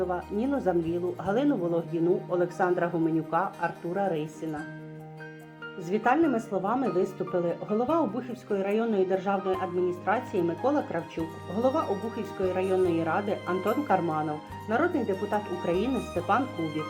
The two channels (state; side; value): identical; both; correlation 1.00